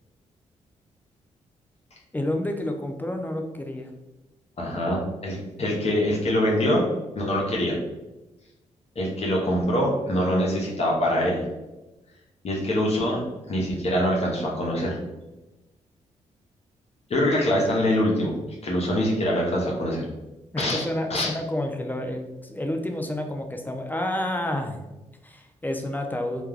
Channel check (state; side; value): normal; both; correlation 0.67